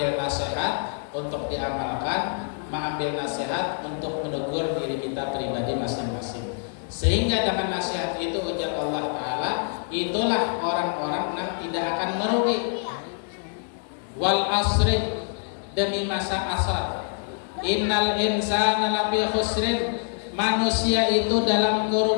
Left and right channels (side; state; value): right; silent; 61 dB below the other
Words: nasihat untuk diamalkan, mengambil nasihat untuk menegur diri kita pribadi masing-masing. Sehingga dengan nasihat itu ujar Allah Ta'ala, itulah orang-orang yang tidak akan merugi. wal asri, demi masa asar. Innal insana lafi khusrin, manusia itu dalam